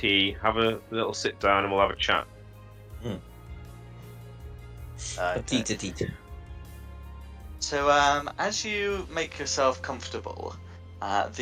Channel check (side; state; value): both; identical; correlation 1.00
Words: have a little sit down, and we'll have a chat. Petite. So, as you make yourself comfortable,